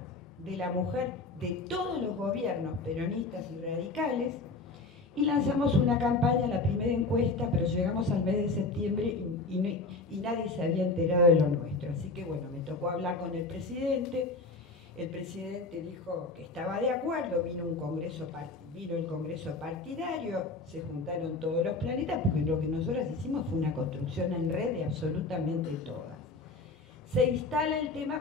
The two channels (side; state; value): right; quieter; 3.5 dB